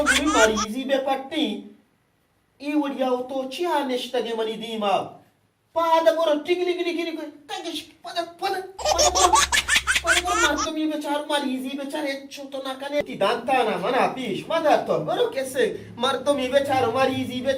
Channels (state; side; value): identical; both; correlation 1.00